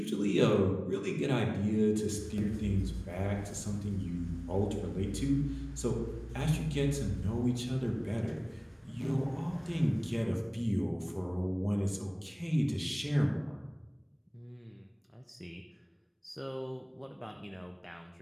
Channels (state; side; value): identical; both; correlation 1.00